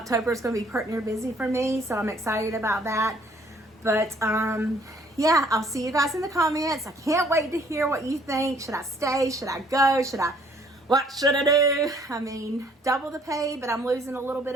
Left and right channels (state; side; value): normal; both; correlation 0.61